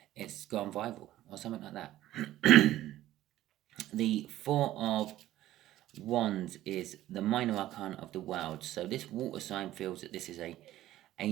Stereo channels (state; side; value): quieter; left; 14.3 dB